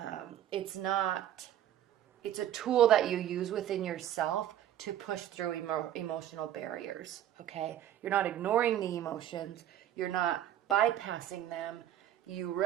it's not, it's a tool that you use within yourself to push through emotional barriers, okay? You're not ignoring the emotions. You're not bypassing them.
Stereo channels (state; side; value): quieter; left; 11.6 dB